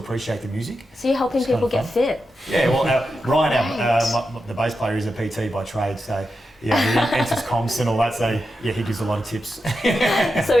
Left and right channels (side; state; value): both; normal; correlation 0.89